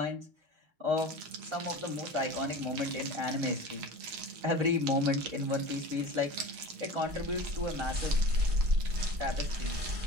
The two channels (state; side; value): late; left; 6.4 ms